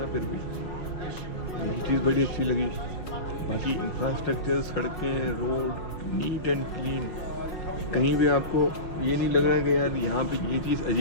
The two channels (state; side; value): late; right; 5.4 ms